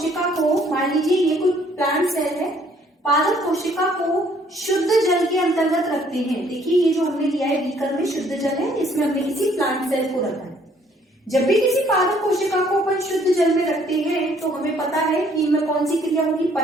को, मान लीजिए ये कोई प्लांट सेल है, पादप कोशिका को शुद्ध जल के अंतर्गत रखते हैं। देखिए, ये जो हमने लिया है बीकर में शुद्ध जल है, इसमें हमने किसी प्लांट सेल को रखा है। जब भी किसी पादप कोशिका को अपन शुद्ध जल में रखते हैं तो हमें पता है कि इनमें कौन सी क्रिया होगी?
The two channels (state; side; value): normal; both; correlation 0.63